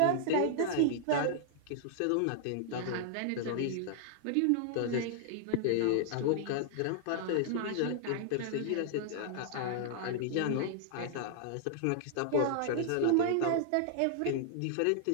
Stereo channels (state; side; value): different; both; correlation -0.01